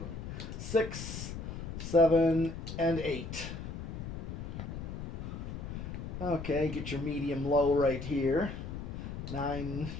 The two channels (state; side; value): noise; left; rumble, 7 dB below the sound